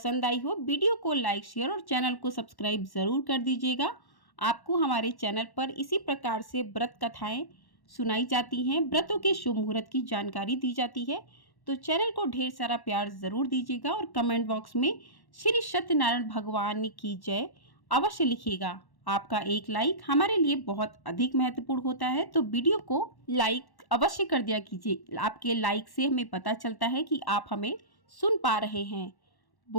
आई हो, वीडियो को लाइक शेयर और चैनल को सब्सक्राइब ज़रूर कर दीजिएगा। आपको हमारे चैनल पर इसी प्रकार से व्रत कथाएं सुनाई जाती हैं, व्रतों के शुभ मुहूर्त की जानकारी दी जाती है। तो चैनल को ढेर सारा प्यार ज़रूर दीजिएगा और कमेंट बॉक्स में श्री सत्यनारायण भगवान की जय अवश्य लिखिएगा। आपका एक लाइक हमारे लिए बहुत अधिक महत्वपूर्ण होता है, तो वीडियो को लाइक अवश्य कर दिया कीजिए। आपके लाइक से हमें पता चलता है कि आप हमें सुन पा रहे हैं।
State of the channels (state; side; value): late; right; 1.1 ms